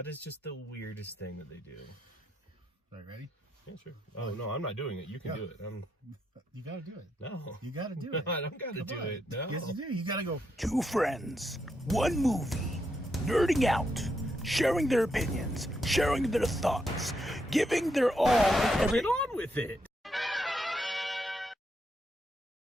is just the weirdest thing that they do. All right, ready? Yeah, sure. Oh, no, I'm not doing it. You can do it. You got to do it. No. You got to do it. I don't got to do it. No. Yes, you do. You got to go. Two friends, one movie, nerding out, sharing their opinions, sharing their thoughts, giving their all and every... Get on with it.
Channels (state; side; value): normal; both; correlation 0.80